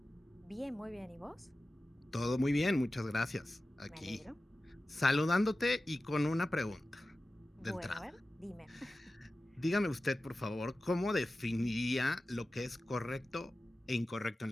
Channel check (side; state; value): both; normal; correlation 0.95